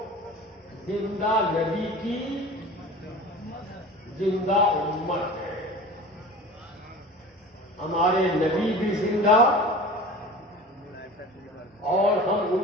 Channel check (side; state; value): both; normal; correlation 0.38